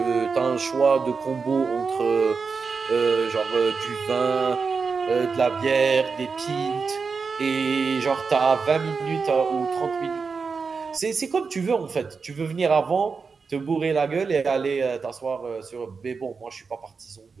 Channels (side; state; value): left; quieter; 5.0 dB